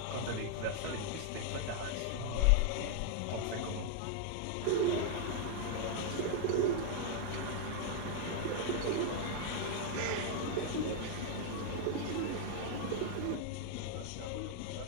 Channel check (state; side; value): different; both; correlation 0.00